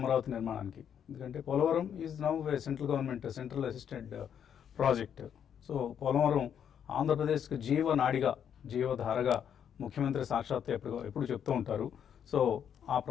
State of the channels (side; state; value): right; quieter; 8.6 dB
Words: నిర్మాణానికి. ఎందుకంటే Polavaram is now central government central assistant project. So Polavaram ఆంధ్రప్రదేశ్కి జీవనాడిగా, జీవధారగా ముఖ్యమంత్రి సాక్షాత్ ఎప్పుడు చెప్తూ ఉంటారు. సో ఆ